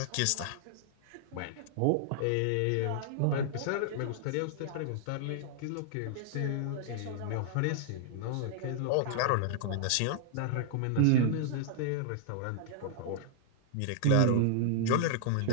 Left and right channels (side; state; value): both; different; correlation -0.01